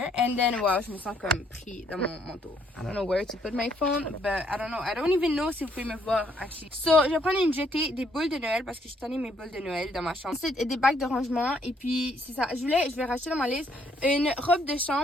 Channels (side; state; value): both; normal; correlation 0.69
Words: And then, wow, je me sens comme pris dans mon manteau. I don't know where to put my phone, but I don't know. I don't even know si vous pouvez me voir, actually. So, je vais prendre une jetée, des boules de Noël parce que je tenais mes boules de Noël dans ma chambre. Ensuite, des bacs de rangement. Et puis, c'est ça. Je vais racheter dans ma liste une robe de